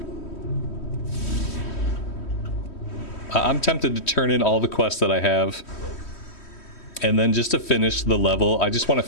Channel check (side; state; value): right; late; 3.1 ms